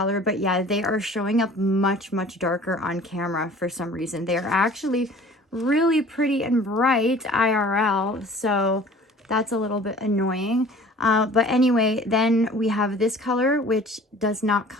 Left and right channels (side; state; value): both; normal; correlation 0.47